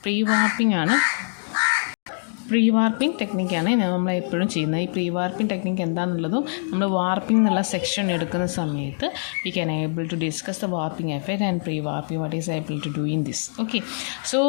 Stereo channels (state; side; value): silent; right; digital silence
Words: pre warping ആണ്. പ്രീ വാർപ്പിംഗ് ടെക്നിക്കാണ് നമ്മൾ എപ്പോഴും ചെയ്യുന്നത്. ഈ പ്രീ വാർപ്പിംഗ് ടെക്നിക്ക് എന്താണെന്നുള്ളതും നമ്മൾ വാർപ്പിംഗ് എന്നുള്ള സെക്ഷൻ എടുക്കുന്ന സമയത്ത് we can able to discuss the warping effect and pre warping what is able to do in this. Okay, so